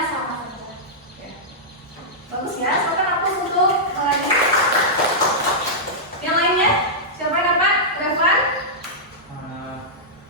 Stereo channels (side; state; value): both; normal; correlation -0.11